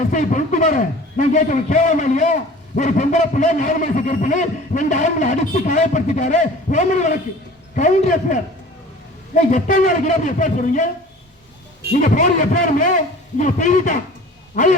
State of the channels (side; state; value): both; normal; correlation 0.44